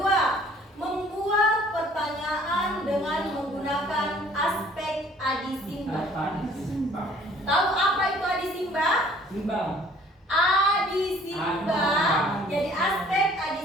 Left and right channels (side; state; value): both; normal; correlation 0.55